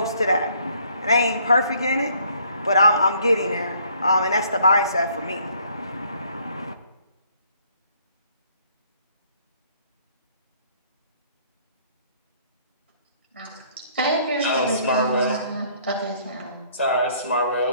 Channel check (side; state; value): both; inverted; correlation -0.63